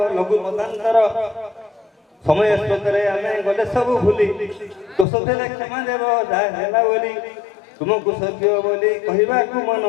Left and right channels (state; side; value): drops out; right; at 5.1 s